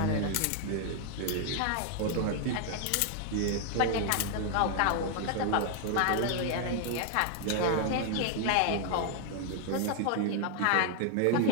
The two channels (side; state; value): both; different; correlation 0.00